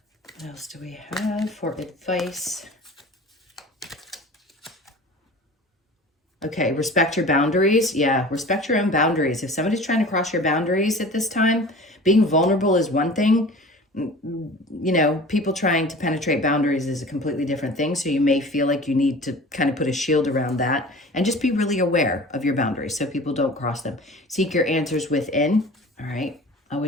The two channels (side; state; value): both; normal; correlation 0.40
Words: What else do we have for advice? Okay, respect your boundaries. Yeah, respect your own boundaries. If somebody's trying to cross your boundaries at this time, being vulnerable is one thing. You know, people trying to penetrate boundaries is a completely different thing. So you may feel like you need to kind of put a shield around that and just be really aware of your boundaries so people don't cross them. Seek your answers within. All right.